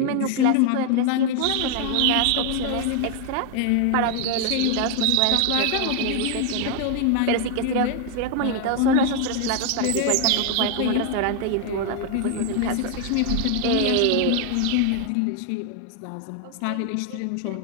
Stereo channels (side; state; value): both; different; correlation 0.00